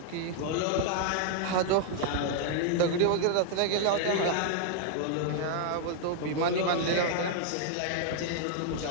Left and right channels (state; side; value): different; both; correlation 0.00